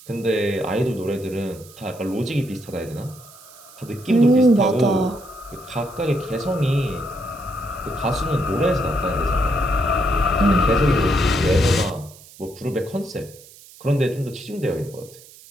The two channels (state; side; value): noise; right; hiss, 21 dB below the sound